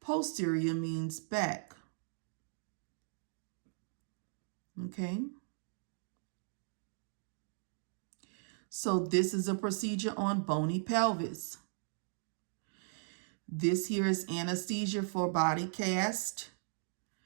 posterior means back. Okay. So this is a procedure on bony pelvis. This here is anesthesia for body cast,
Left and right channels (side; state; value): left; silent; digital silence